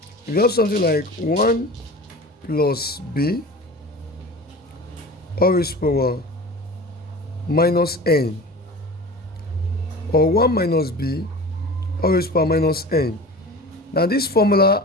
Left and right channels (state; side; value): normal; both; correlation 0.36